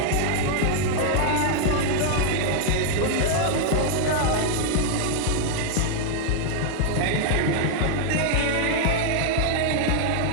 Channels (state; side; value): different; both; correlation 0.00